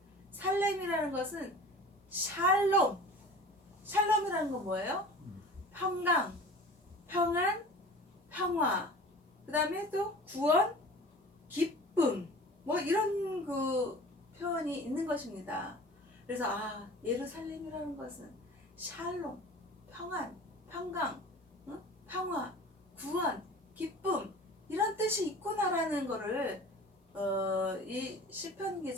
살렘이라는 것은 샬롬. 샬롬이라는 건 뭐예요? 평강, 평안, 평화. 그 다음에 또 구원, 기쁨. 뭐 이런 그 표현이 있는 것입니다. 그래서 예루살렘이라는 것은 샬롬, 평안, 평강, 평화, 구원, 기쁨 이런 뜻이 있구나라는 거를 이 시편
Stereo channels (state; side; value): normal; both; correlation 0.40